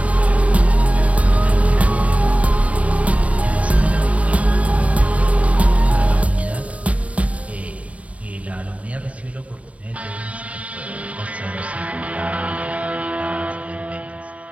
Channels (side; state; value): left; late; 0.066 ms